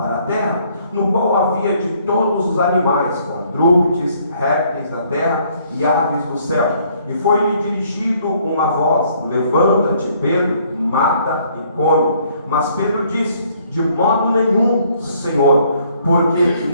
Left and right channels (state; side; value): inverted; both; correlation -0.64